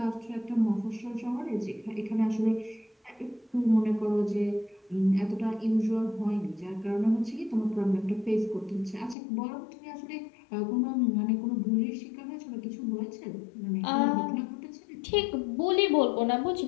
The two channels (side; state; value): right; drops out; at 9.2 s